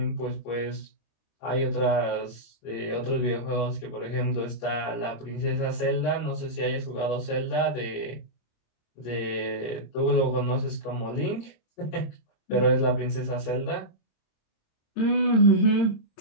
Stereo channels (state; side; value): late; right; 26 ms